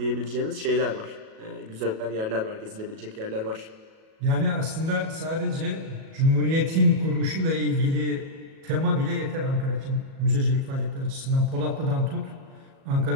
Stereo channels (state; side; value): late; left; 37 ms